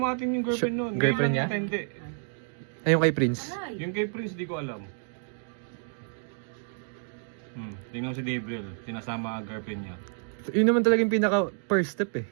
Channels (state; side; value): silent; left; 58 dB below the other